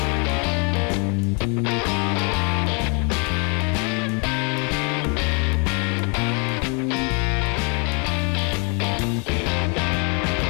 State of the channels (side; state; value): right; quieter; 34.5 dB